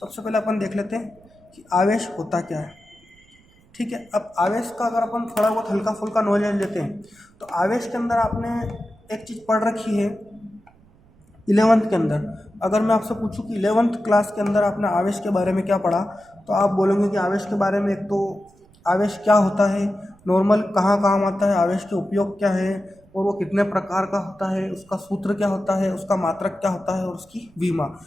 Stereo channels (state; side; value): noise; right; rumble, 29 dB below the sound